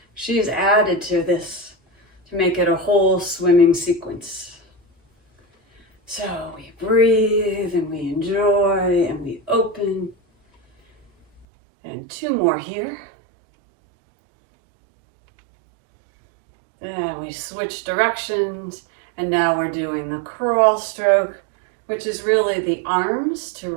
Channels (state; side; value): drops out; left; at 11.5 s